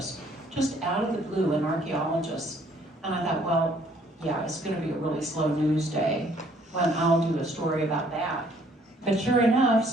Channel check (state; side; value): normal; both; correlation 0.62